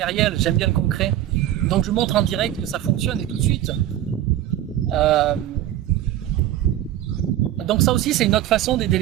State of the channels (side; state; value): left; quieter; 12.8 dB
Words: j'aime bien le concret. Donc je montre en direct que ça fonctionne et tout de suite. Donc ça aussi c'est une autre façon d'aider